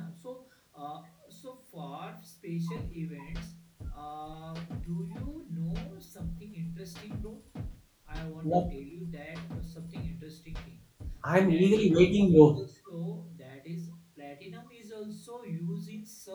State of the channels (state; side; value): identical; both; correlation 1.00